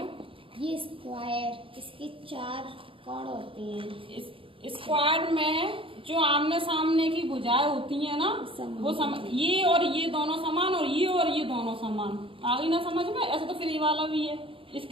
ये स्क्वायर, इसके चार कोण होते हैं। स्क्वायर में जो आमने सामने की भुजाएं होती हैं ना, वो ये और ये दोनों समान, और ये दोनों समान। आ गई ना समझ में? ऐसा तो फिर ये वाला भी है,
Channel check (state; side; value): late; left; 0.26 ms